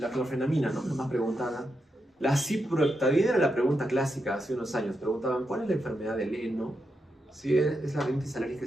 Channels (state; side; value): normal; both; correlation 0.85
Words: ¿no? Nos preguntaban. La ciproheptadina era la pregunta clásica hace unos años. Preguntaban, ¿cuál es la enfermedad del heno? Sí, es la rinitis alérgica